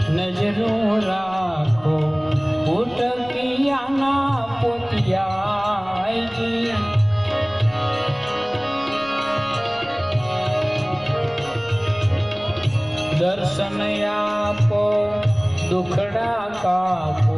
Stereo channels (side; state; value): left; noise; rumble, 24 dB below the sound